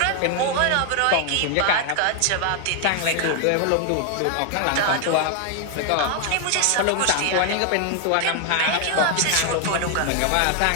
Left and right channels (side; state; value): both; different; correlation 0.00